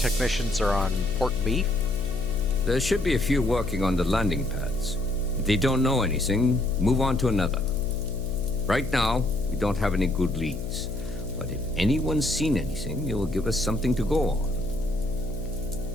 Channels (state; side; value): noise; left; hum, 8 dB below the sound